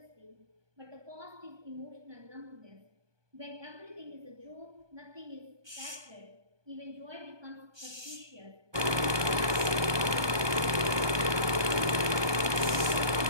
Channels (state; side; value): late; left; 1.2 ms